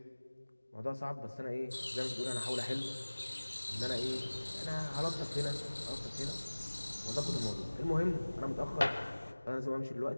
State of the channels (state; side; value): inverted; both; correlation -1.00